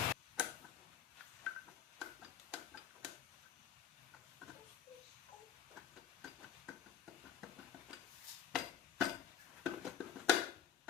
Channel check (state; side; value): quieter; right; 9.6 dB